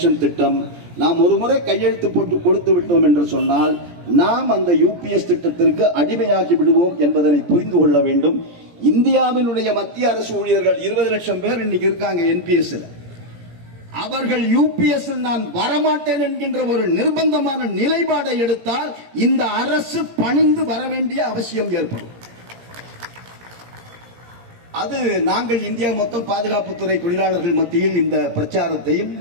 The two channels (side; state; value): left; late; 17 ms